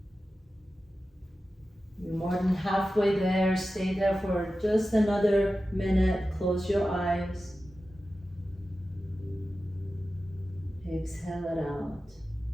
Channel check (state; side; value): normal; both; correlation 0.94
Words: You're more than halfway there. Stay there for just another minute. Close your eyes. Exhale it out.